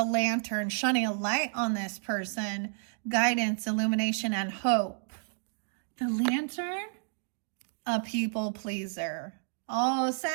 lantern, shining a light on this person. Guidance, illumination, and hope. The lantern? A people pleaser. Oh,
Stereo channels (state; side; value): silent; left; digital silence